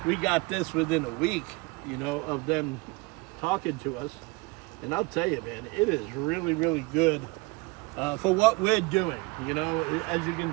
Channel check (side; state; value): left; quieter; 26.1 dB